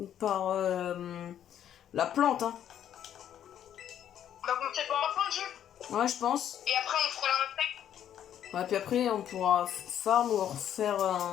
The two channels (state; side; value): quieter; right; 10.2 dB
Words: plante, hein. On va commencer par un point de jeu. Ouais, je pense. Et après, on fera l'insecte. Ouais, puis après, on pourra farm ou refaire